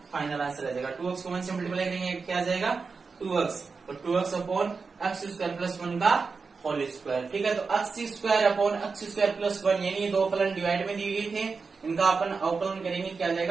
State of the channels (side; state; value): left; quieter; 4.7 dB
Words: फाइनल आंसर आ जाएगा। 2x को 1 से मल्टीप्लाई करेंगे क्या आ जाएगा 2x, तो 2x upon x square plus 1 का होल स्क्वायर। ठीक है, तो x square upon x square plus 1 यानी ये दो फलन डिवाइड में दिए गए थे, इनका अपन अवकलन करेंगे क्या आ